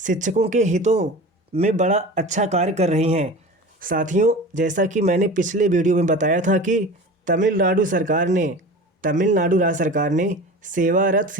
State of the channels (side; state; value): both; normal; correlation 0.34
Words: के हितों में बड़ा अच्छा कार्य कर रही हैं। साथियों जैसा कि मैंने पिछले वीडियो में बताया था कि तमिलनाडु राज्य सरकार ने सेवारत